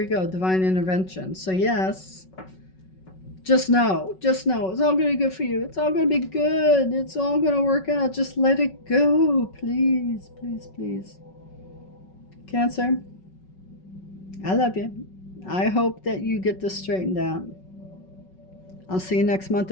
go, divine intervention. So yes, just know, it's all going to be good for you. It's all going to be good. It's all going to work out. Just let it go, please, please, please. Cancer, I love you. I hope that you get this straightened out. I'll see you next month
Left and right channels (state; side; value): late; right; 5.4 ms